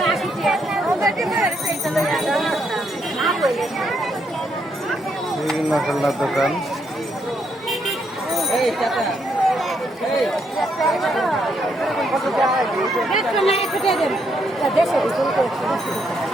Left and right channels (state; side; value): normal; both; correlation 0.76